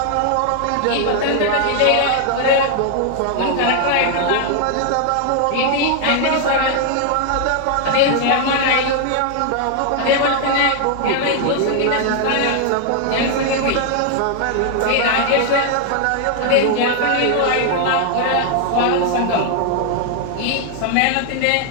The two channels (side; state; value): both; different; correlation 0.00